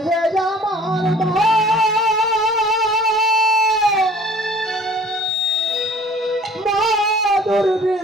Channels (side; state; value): both; normal; correlation 0.50